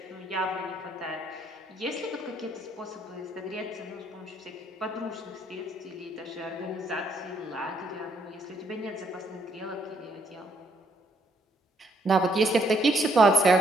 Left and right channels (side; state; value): both; normal; correlation 0.70